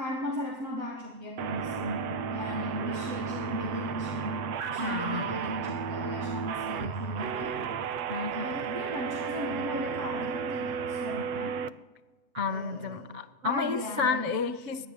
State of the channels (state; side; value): late; left; 7.8 ms